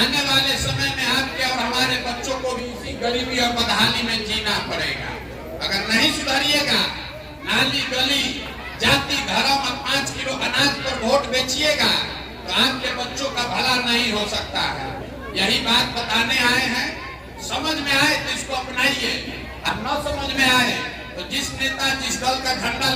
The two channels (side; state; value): both; identical; correlation 1.00